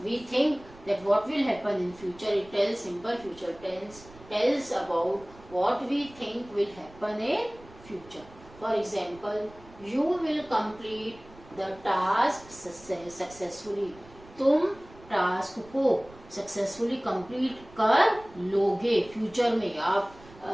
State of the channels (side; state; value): right; noise; rumble, 22 dB below the sound